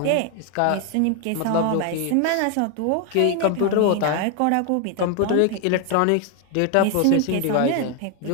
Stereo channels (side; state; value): both; different; correlation 0.01